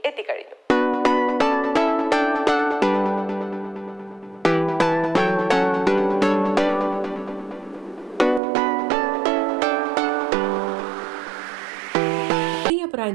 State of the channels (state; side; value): drops out; left; at 8.4 s